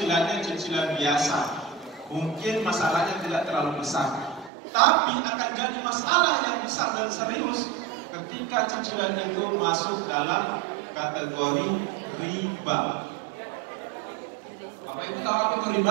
cicilan biasa, mungkin masalahnya tidak terlalu besar. Tapi akan jadi masalah yang besar dan serius ketika cicilan itu masuk dalam kategori riba. Bapak Ibu tahu apa itu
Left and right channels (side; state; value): left; drops out; at 4.5 s